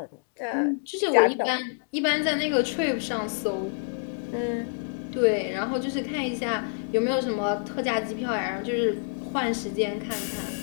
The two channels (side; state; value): right; silent; digital silence